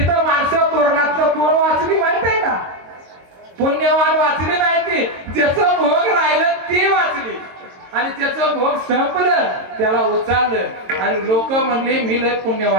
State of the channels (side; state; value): left; late; 22 ms